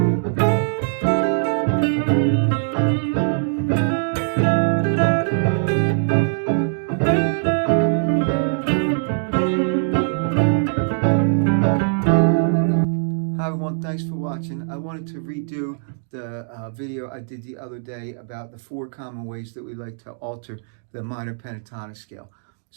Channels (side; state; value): left; silent; digital silence